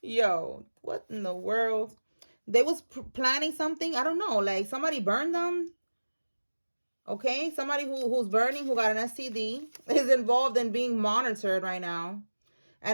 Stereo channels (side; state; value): both; inverted; correlation -1.00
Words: yo, what in the world? They was planning something. I don't know. Like somebody burned them. Okay. Somebody who's burning, who got an STD, is involved in being monitored right now.